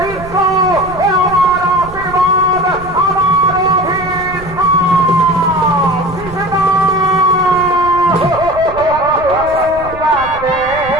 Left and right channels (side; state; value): right; noise; rumble, 15 dB below the sound